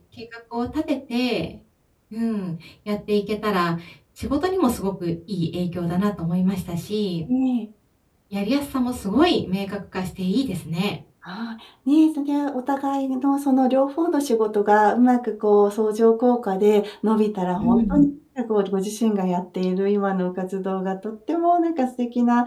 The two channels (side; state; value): both; identical; correlation 1.00